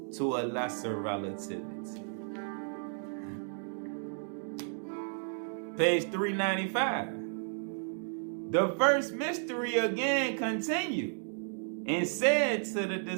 to a lesser relativity. Page 395. The first mystery again continued and said to the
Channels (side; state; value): left; silent; digital silence